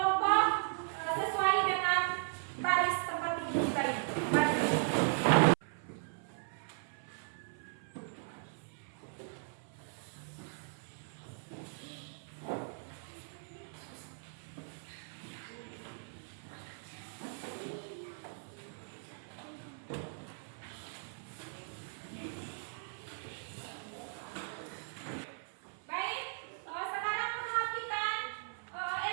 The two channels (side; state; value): left; silent; 53 dB below the other